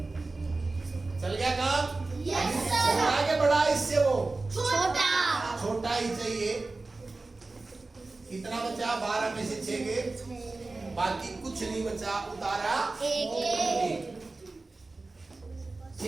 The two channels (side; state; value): left; quieter; 3.4 dB